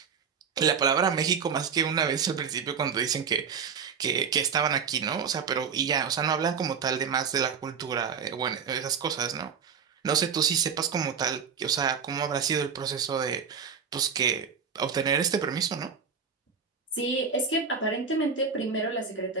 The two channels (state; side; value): quieter; left; 6.4 dB